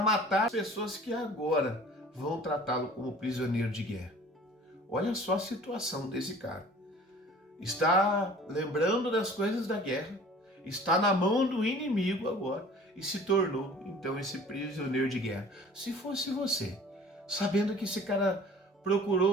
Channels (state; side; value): normal; both; correlation 0.47